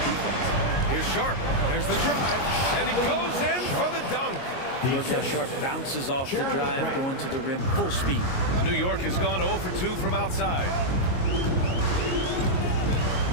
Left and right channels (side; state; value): right; late; 22 ms